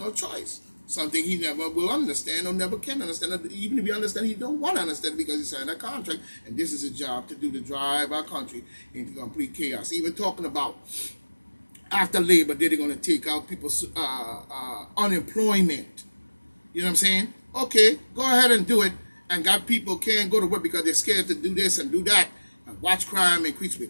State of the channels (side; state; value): both; inverted; correlation -1.00